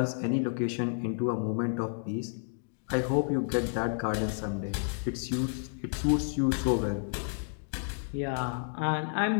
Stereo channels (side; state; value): right; silent; digital silence